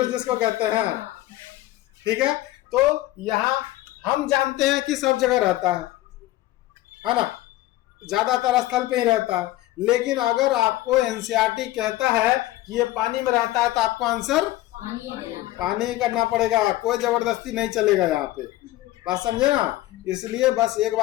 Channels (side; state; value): right; quieter; 16.5 dB